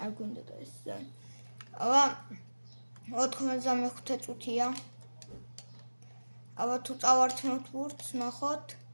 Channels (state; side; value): inverted; both; correlation -1.00